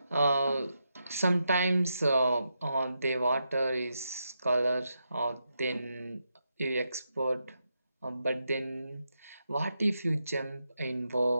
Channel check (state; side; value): inverted; both; correlation -0.84